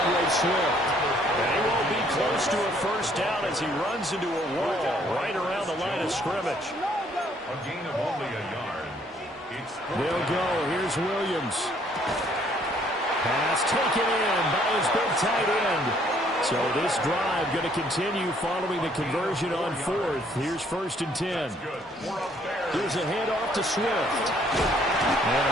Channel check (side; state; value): both; normal; correlation 0.64